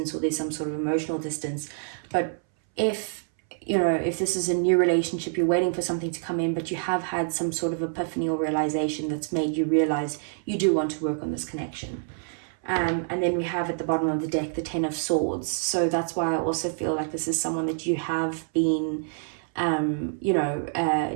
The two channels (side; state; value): left; silent; 60 dB below the other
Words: or there's some sort of emotional distance. But if, you know, if this is a new relationship, you're waiting for something to come in, but you have had some sort of epiphany or realization that's made you realize you do want to work on this connection. And then we have at the bottom of the deck the Ten of Swords. So that's why I also feel like this is someone that you have been